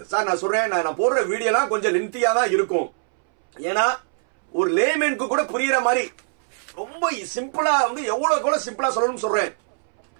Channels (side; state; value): left; silent; 64 dB below the other